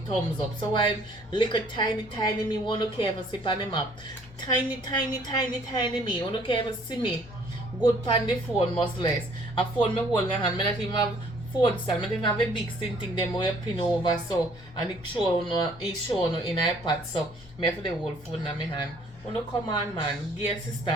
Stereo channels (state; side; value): normal; both; correlation 0.59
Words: thumbs up. So I little tiny me won't care if I sip on them up. Tiny me. Won't care if I see me. Good pan the phone must less. A phone me hold my hand. Me not even have phone stand. Me not even have a big thing them where you pin over so and it show no in iPad. So me have the whole phone in my hand. Wanna come on man, give sister